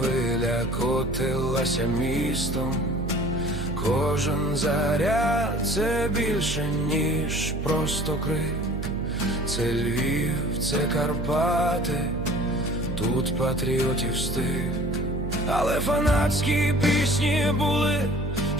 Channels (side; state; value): right; noise; hum, 4 dB below the sound